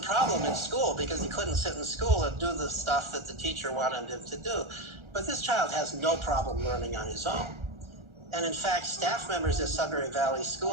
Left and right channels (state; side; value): late; left; 1.4 ms